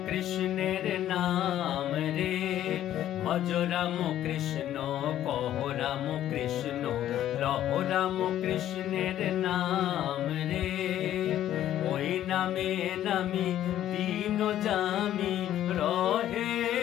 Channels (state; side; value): quieter; right; 12.1 dB